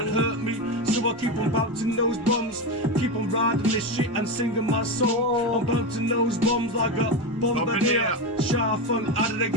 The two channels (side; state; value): both; normal; correlation 0.16